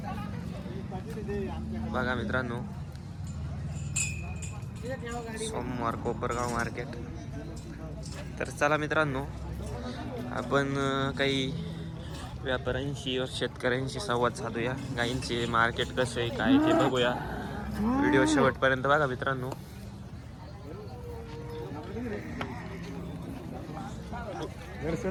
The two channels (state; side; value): identical; both; correlation 1.00